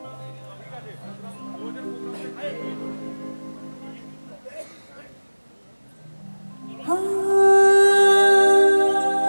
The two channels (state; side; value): inverted; both; correlation -1.00